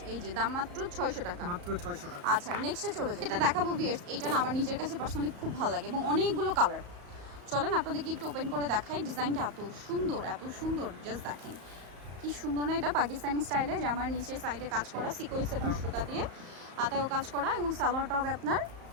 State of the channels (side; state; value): left; late; 34 ms